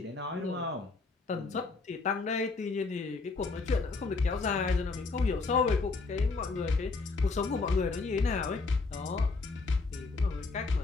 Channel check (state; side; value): quieter; right; 4.0 dB